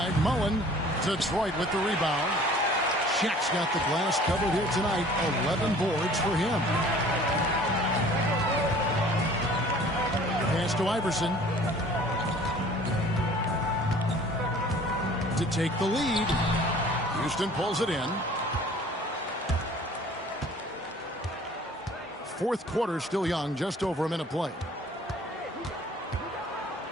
Mullen. Detroit with the rebound. Shaq's got the glass covered here tonight. 11 boards for him. Pass to Iverson. To take the lead. Houston pulls it in. Fourth quarter still young, just over a minute play.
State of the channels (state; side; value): normal; both; correlation 0.50